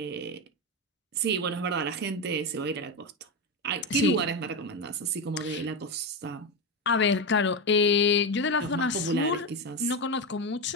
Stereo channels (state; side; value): normal; both; correlation 0.13